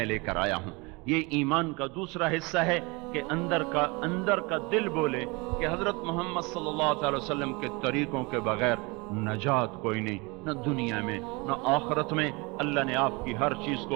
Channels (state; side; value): quieter; left; 27.1 dB